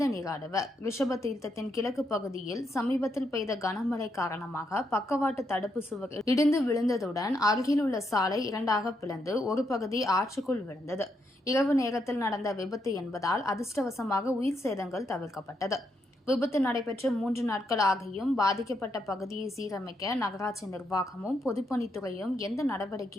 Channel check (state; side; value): normal; both; correlation 0.79